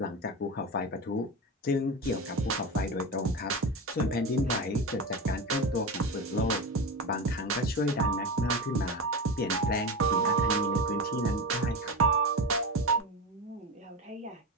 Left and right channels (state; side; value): normal; both; correlation 0.22